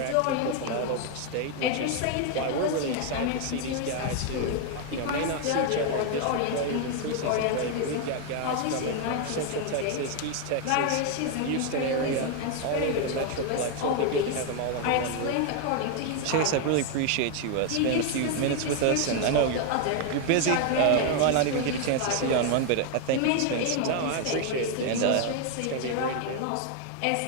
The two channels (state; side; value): different; both; correlation 0.01